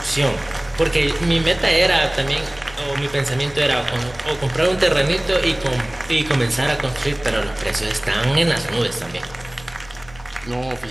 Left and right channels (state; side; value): noise; left; rumble, 22 dB below the sound